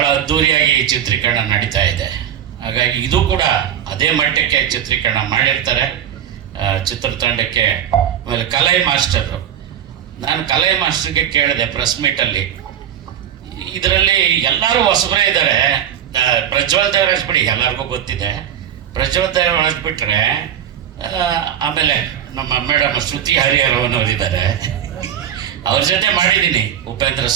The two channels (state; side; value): quieter; left; 9.9 dB